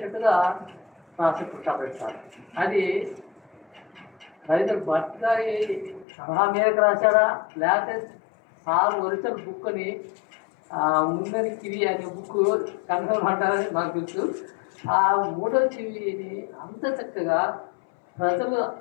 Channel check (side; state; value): right; drops out; at 6.1 s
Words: రాసి పుట్టాపెడతారు. అది రవీంద్ర భట్ గారి సలహా మేరకు రాశాడా, లేకపోతే సార్ ఒరిజినల్ బుక్ని ముందని కివి అనే బుక్ కన్ఫర్మ్ అంటారని నాకు తెలుసు. ఆ మూడో చెవిని అంత చక్కగా ప్రజలు